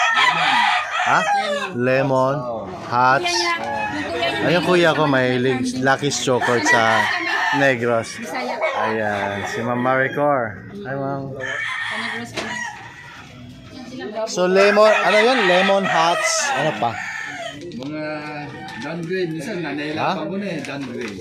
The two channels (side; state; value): both; identical; correlation 1.00